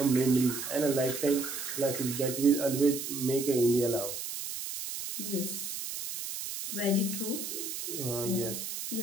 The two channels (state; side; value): noise; right; hiss, 6 dB below the sound